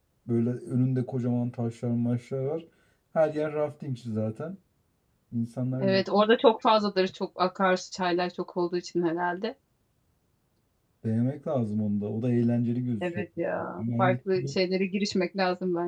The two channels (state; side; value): identical; both; correlation 1.00